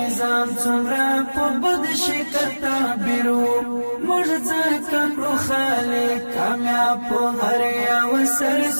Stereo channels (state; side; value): inverted; both; correlation -1.00